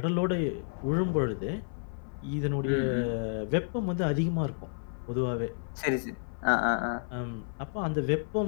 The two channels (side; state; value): right; silent; 57 dB below the other